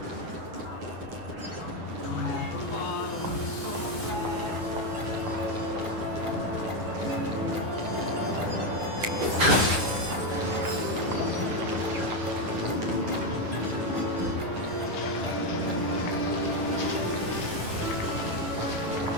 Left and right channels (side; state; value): left; late; 9.1 ms